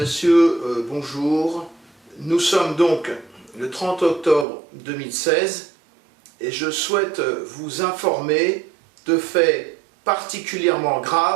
bonjour. Nous sommes donc le 30 octobre 2016 et je souhaite vous informer de faits particulièrement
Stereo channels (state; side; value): drops out; left; at 4.5 s